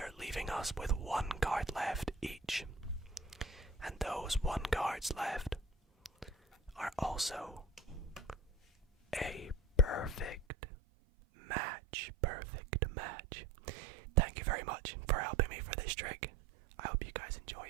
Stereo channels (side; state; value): left; drops out; at 10.5 s